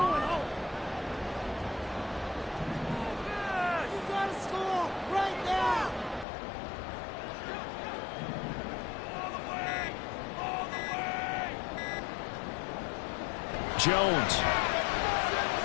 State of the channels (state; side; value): drops out; right; at 6.2 s